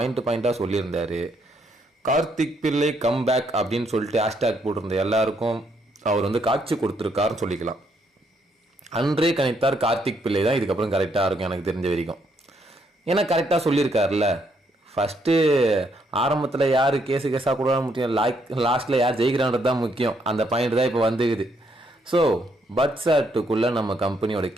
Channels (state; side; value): normal; both; correlation 0.73